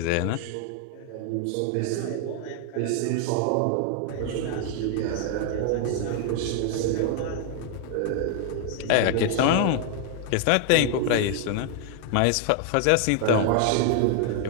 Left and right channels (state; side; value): different; both; correlation 0.00